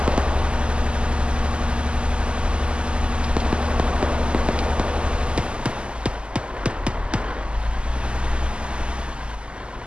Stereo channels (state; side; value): late; left; 0.051 ms